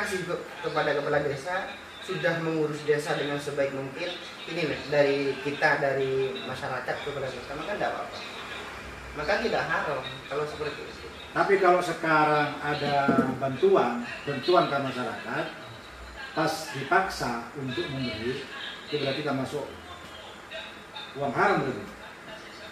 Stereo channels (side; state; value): both; identical; correlation 1.00